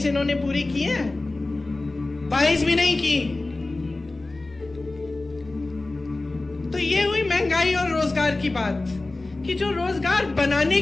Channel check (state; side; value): quieter; right; 3.1 dB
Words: इन्होंने पूरी की है? 22 भी नहीं की। तो ये हुई महंगाई और रोजगार की बात, कि जो रोजगार बनाने